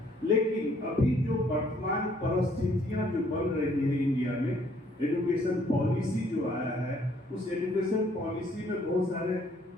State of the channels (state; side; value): normal; both; correlation 0.64